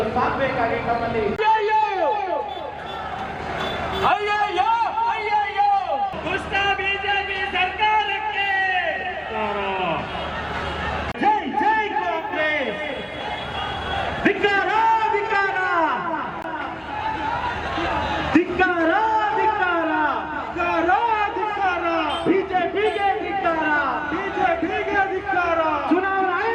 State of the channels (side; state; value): both; identical; correlation 1.00